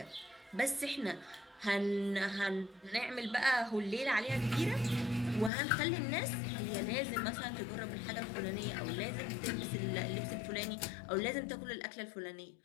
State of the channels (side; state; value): right; drops out; at 5.5 s